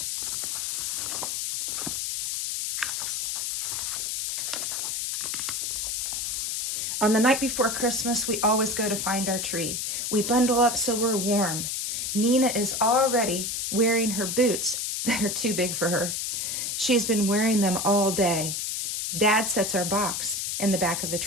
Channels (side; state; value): left; noise; hiss, 2 dB below the sound